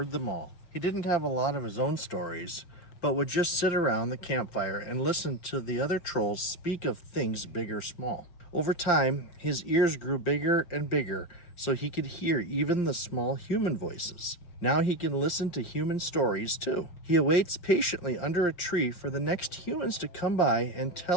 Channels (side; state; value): right; late; 5.7 ms